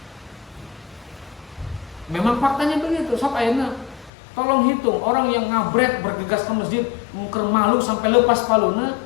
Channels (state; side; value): drops out; right; at 4.1 s